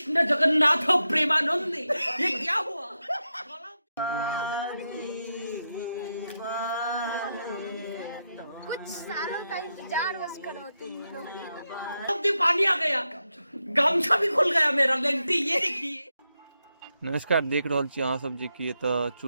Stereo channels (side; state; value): both; inverted; correlation -0.86